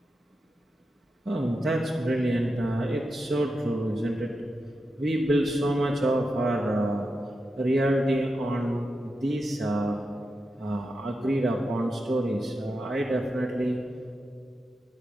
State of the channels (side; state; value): both; normal; correlation 0.88